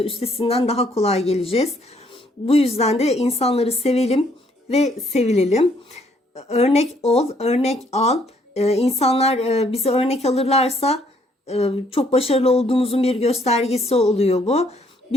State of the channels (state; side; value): normal; both; correlation 0.67